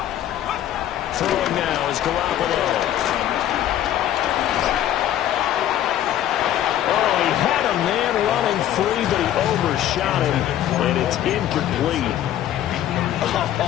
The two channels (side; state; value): right; quieter; 11.8 dB